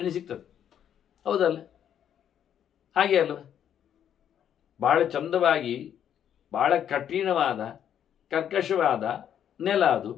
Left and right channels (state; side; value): quieter; right; 9.5 dB